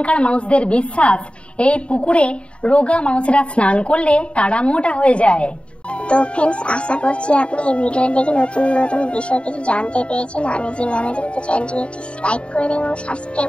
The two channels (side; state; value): right; late; 0.058 ms